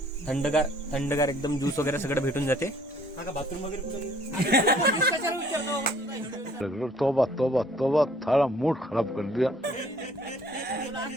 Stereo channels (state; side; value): normal; both; correlation 0.59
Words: थंडगार एकदम ज्यूस वगैरे सगळं भेटून जाते. बाथरूम वगैरे तोबा तोबा तोबा, थारा मूड खराब कर दिया.